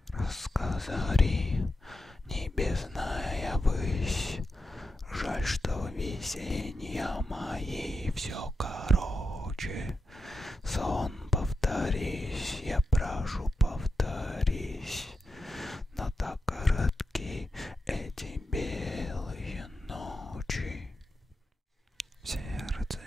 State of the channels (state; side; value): normal; both; correlation 0.88